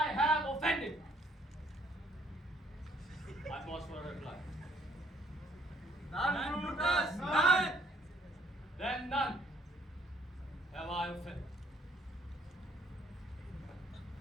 have offended. I pause for a reply. None, Brutus, none. Then none have I offended.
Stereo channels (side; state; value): both; normal; correlation 0.65